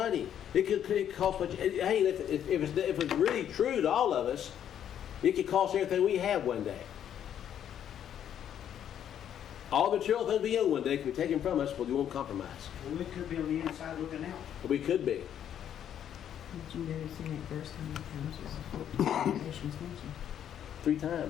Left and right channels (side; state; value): right; quieter; 9.8 dB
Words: It could cost much. Hey, if it's really true to all of us, it could cost everything we have one day. All the material things we own one day can be taken from us, but we won't compromise. Well, we could be on the inside looking out. We could be. Did you notice in that verse how many times was the nations mentioned? 3